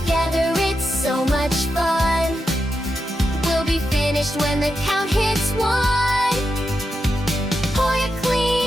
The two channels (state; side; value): normal; both; correlation 0.87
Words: it's so much fun. We'll be finished when the count hits 1. Pour your